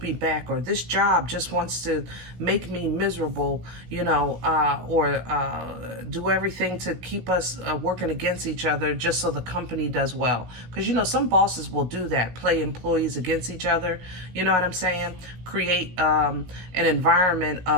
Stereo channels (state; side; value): late; left; 16 ms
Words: me back, or this job just wants to make me miserable, you know, or do everything to keep us working against each other just so the company does well. Because, you know, some bosses will do that, play employees against each other. You know what I'm saying? Create an environment